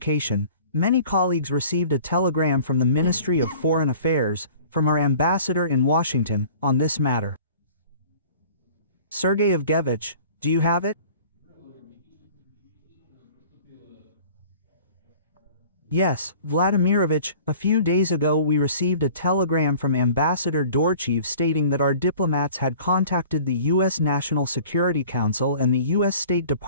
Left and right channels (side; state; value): both; inverted; correlation -0.47